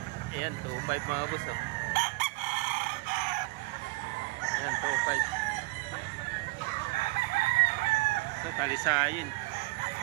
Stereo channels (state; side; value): quieter; left; 24.2 dB